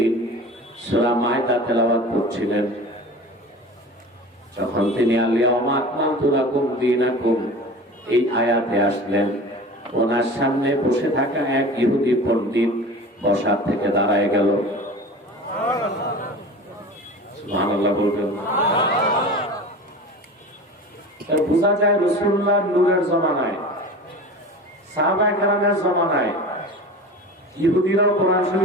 সূরা মায়দা তেলাওয়াত করছিলেন। যখন তিনি আল-ইয়াওমা আকমালতু লাকুম দীনাকুম এই আয়াতে আসলেন, ওনার সামনে বসে থাকা এক ইহুদি পণ্ডিত বসার থেকে দাঁড়ায় গেল। সুবহানাল্লাহ বলবেন। বোঝা যায় রাসূলুল্লাহ নূরের জমানায়, সাহাবায়ে কেরামের জমানায় ইহুদিরাও কোরআন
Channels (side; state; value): both; normal; correlation 0.36